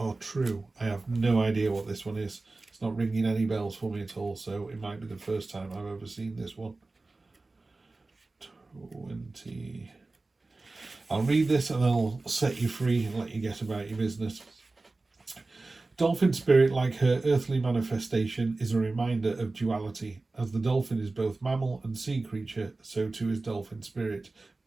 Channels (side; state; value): left; quieter; 3.4 dB